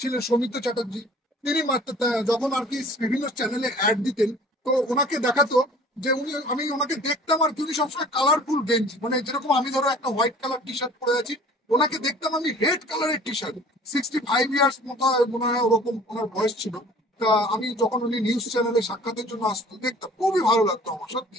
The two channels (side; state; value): both; normal; correlation 0.48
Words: ছিলেন, সৌমিত্র চ্যাটার্জি, তিনি মাত্র যখন আর কি বিভিন্ন চ্যানেলে অ্যাড দিতেন, তো ওনাকে দেখাতো যে আমি ওনাকে দেখতাম আর কি, উনি সবসময় কালারফুল গেঞ্জি, মানে যেরকম আমি ধরো একটা হোয়াইট কালার টি শার্ট পরে আছি, ওনাকে দেখতাম আমি রেড কালারের টি শার্ট। 65 ইয়ার্স মতো মনে হয় ওরকম ওনার বয়স ছিল। তা আমি যখন উনি নিউজ চ্যানেলে সাক্ষাতের জন্য আসতো, দেখতাম খুবই ভালো লাগতো আমার,